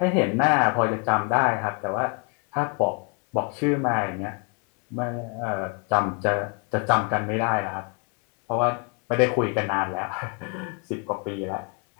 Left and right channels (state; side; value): quieter; right; 34.4 dB